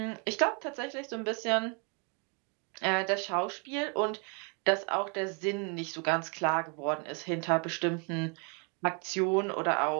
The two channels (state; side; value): quieter; left; 34.8 dB